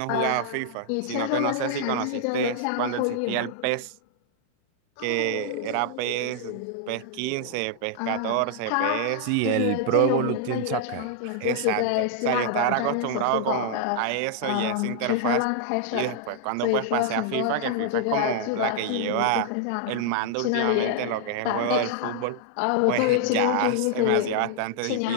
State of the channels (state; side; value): different; both; correlation -0.01